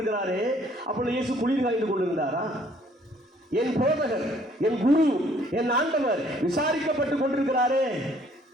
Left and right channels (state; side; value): normal; both; correlation 0.61